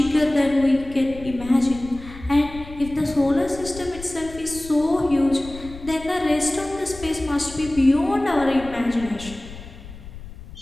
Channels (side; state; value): left; noise; rumble, 15 dB below the sound